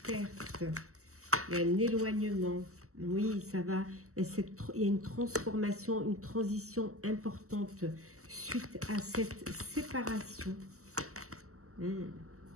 perte, il y a un éloignement. Oui, ça va. Il y a une transformation, une transition importante suite à cette séparation. Il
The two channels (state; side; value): late; left; 0.64 ms